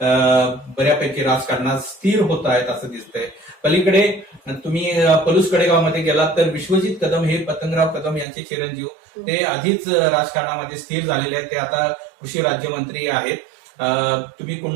बऱ्यापैकी राजकारणात स्थिर होत आहेत असं दिसतंय. पलीकडे तुम्ही पलूस कडेगावमध्ये गेलात तर विश्वजित कदम हे पतंगराव कदम यांचे चिरंजीव, ते आधीच राजकारणामध्ये स्थिर झालेले आहेत. ते आता कृषी राज्यमंत्री आहेत. तुम्ही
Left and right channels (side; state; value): left; drops out; at 8.2 s